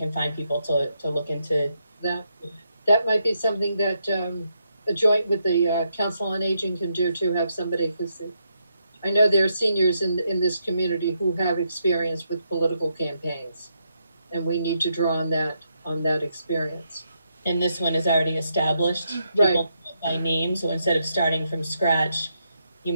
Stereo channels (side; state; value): both; inverted; correlation -0.79